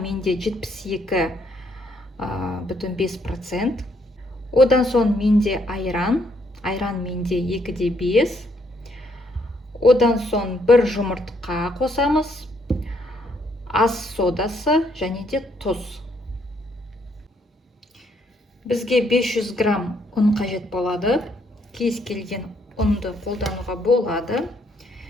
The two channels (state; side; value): normal; both; correlation 0.71